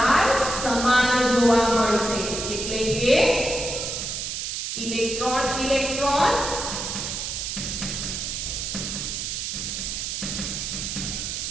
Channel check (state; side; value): noise; right; hiss, 4 dB below the sound